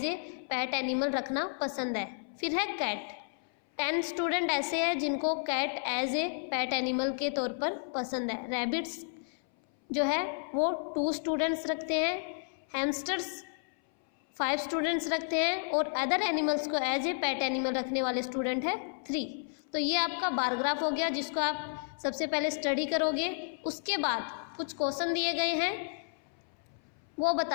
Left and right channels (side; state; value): right; silent; 57 dB below the other